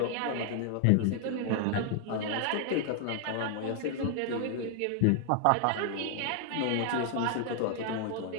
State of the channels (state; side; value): different; both; correlation 0.00